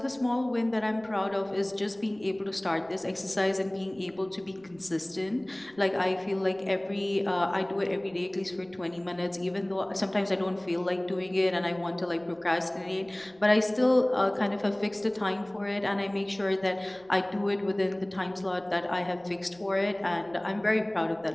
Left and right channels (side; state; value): right; noise; rumble, 29 dB below the sound